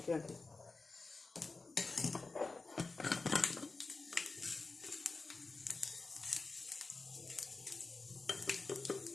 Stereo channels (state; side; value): quieter; right; 3.8 dB